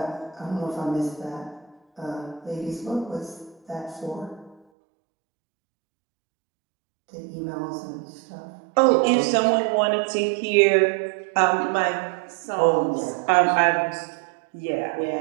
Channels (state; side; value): drops out; left; at 4.6 s